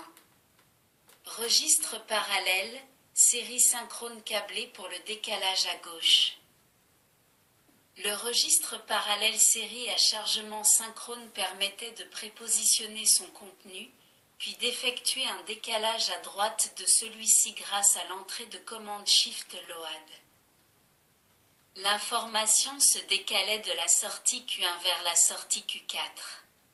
Registre parallèle, série synchrone câblée pour le décalage à gauche. Le registre parallèle série à chargement synchrone permettait de prépositionner son contenu, puis d'effectuer un décalage à droite de celui-ci grâce à l'entrée de commande Shift-Load. L'information se décalait de la sortie Q1 vers la sortie Q4.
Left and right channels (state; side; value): identical; both; correlation 1.00